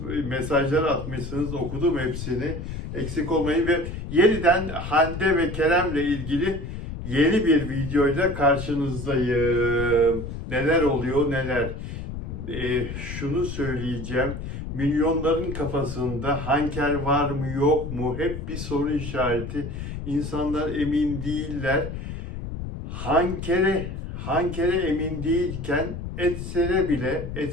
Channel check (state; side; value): noise; left; rumble, 7 dB below the sound